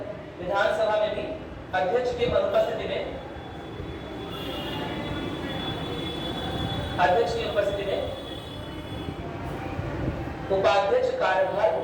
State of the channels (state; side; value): identical; both; correlation 1.00